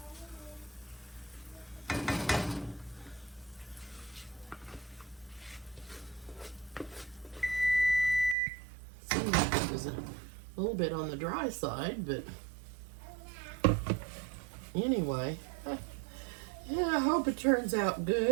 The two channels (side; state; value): left; drops out; at 8.3 s